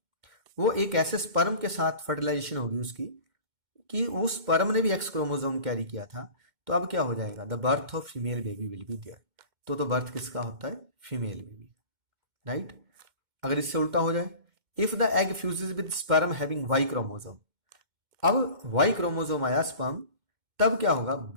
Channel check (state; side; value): late; left; 2.1 ms